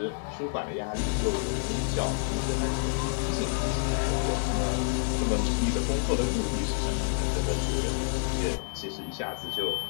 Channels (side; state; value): right; silent; digital silence